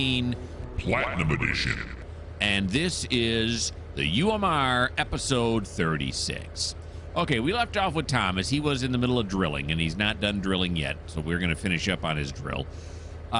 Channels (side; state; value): both; identical; correlation 1.00